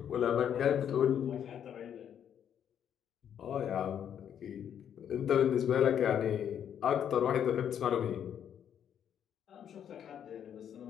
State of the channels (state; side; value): quieter; right; 9.1 dB